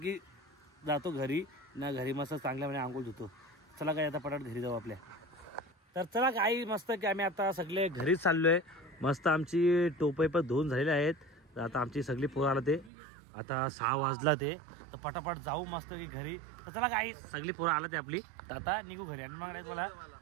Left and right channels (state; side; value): drops out; left; at 12.9 s